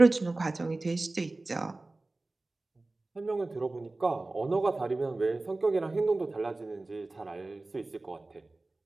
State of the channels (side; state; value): left; quieter; 3.1 dB